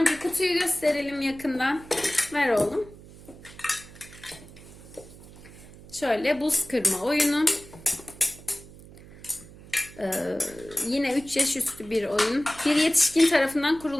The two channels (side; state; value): right; noise; hum, 19 dB below the sound